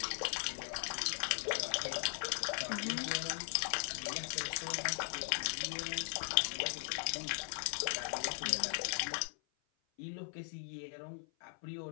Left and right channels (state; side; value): silent; right; 52 dB below the other